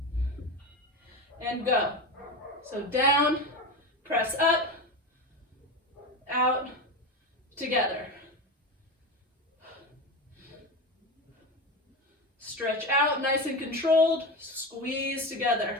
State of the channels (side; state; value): both; normal; correlation 0.22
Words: and go. So down, press up, out, together. Stretch out, nice and controlled, squeeze